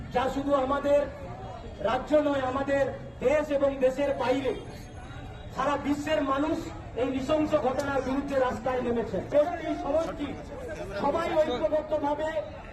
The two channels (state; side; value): identical; both; correlation 1.00